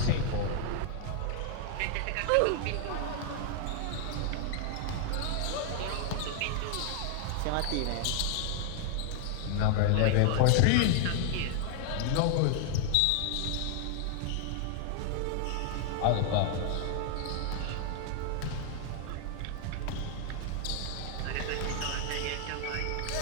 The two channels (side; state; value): both; different; correlation 0.00